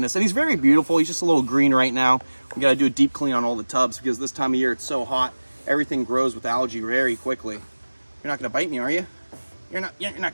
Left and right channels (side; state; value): both; inverted; correlation -1.00